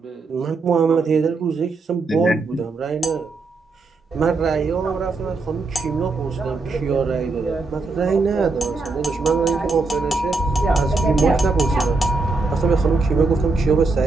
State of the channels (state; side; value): quieter; left; 3.8 dB